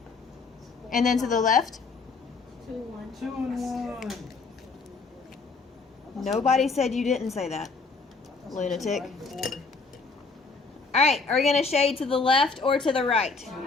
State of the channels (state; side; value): quieter; right; 4.3 dB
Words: And then to the left? 2, 1. 2 and 1. Nobody said you didn't say that. Lunatic. 4. Alright, are we going to shade to the left or to the right?